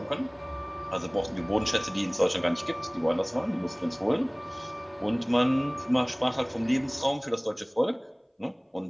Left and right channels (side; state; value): both; identical; correlation 1.00